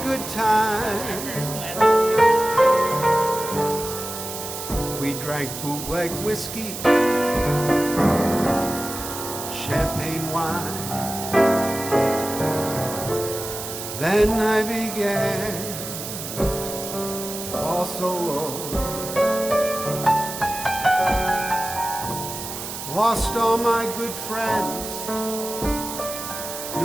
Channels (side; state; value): right; noise; hiss, 8 dB below the sound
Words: good time. We drank bootleg whiskey, champagne wine. Then I began to fall so low. Lost all my good friends,